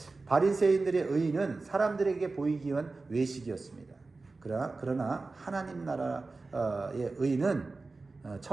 바리새인들의 의의는 사람들에게 보이기 위한 외식이었습니다. 그러나 하나님 나라의 의는,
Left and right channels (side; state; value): left; quieter; 3.7 dB